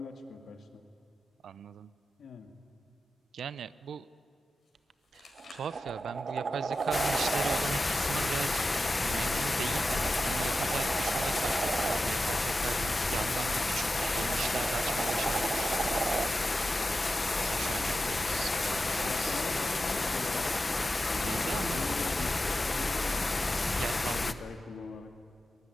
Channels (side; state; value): both; normal; correlation 0.92